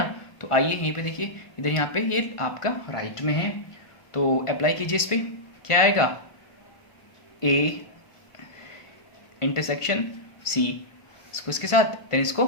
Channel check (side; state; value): right; late; 1.5 ms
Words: तो आइए यहीं पे देखिए, इधर यहाँ पे ये आपका राइट में है, तो अप्लाई कीजिए इस पे। क्या आएगा, ए इंटरसेक्शन सी, इसको इसके साथ देन इसको